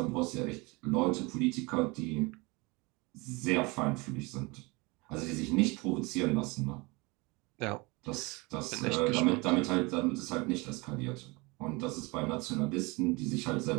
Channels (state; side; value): quieter; left; 26.1 dB